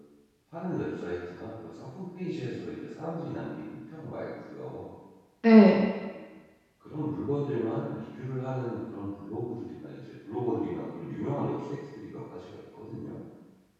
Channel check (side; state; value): both; identical; correlation 1.00